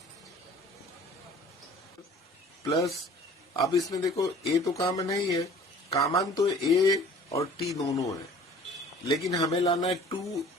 प्लस अब इसमें देखो ए तो कॉमन है ही है, कॉमन तो ए और टी दोनों है, लेकिन हमें लाना है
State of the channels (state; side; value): normal; both; correlation 0.48